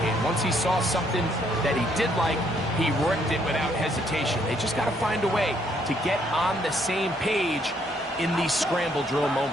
Once he saw something that he did like, he ripped it without hesitation. They just got to find a way to get on the same page in these scramble drill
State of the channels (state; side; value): normal; both; correlation 0.69